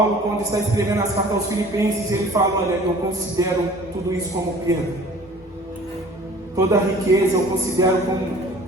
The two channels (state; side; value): normal; both; correlation 0.48